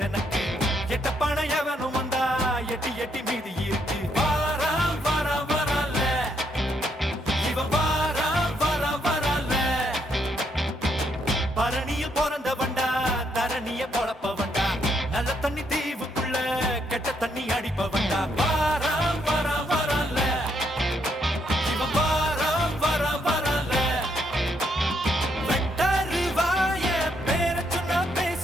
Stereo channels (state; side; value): normal; both; correlation 0.75